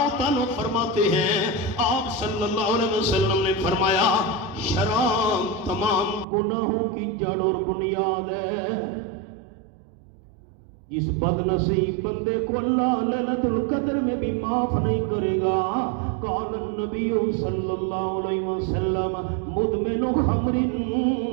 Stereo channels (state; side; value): drops out; left; at 6.2 s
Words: تعالیٰ فرماتے ہیں آپ صلی اللہ علیہ وسلم نے فرمایا شراب تمام گناہوں کی جڑ اور بنیاد ہے. جس بد نصیب بندے کو اللہ لیلۃ القدر میں بھی معاف نہیں کرے گا. قال النبی صلی اللہ علیہ وسلم مدمن خمر